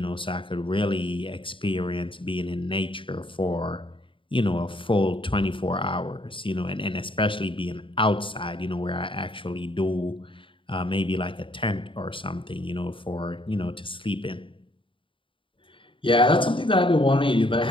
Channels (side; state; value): right; late; 0.25 ms